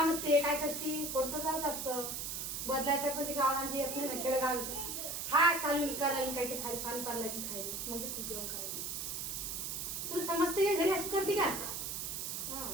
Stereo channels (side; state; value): right; noise; hiss, 4 dB below the sound